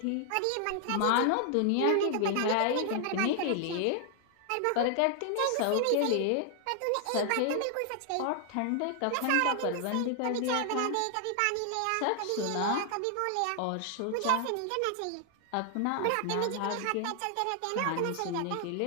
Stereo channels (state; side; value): different; both; correlation 0.00